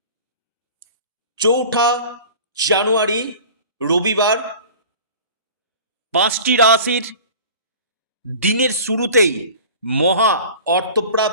4 জানুয়ারি রবিবার 5টি রাশির দিনের শুরুতেই মহা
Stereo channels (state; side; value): inverted; both; correlation -0.40